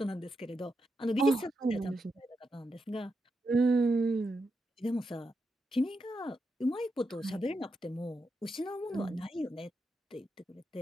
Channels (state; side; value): normal; both; correlation 0.86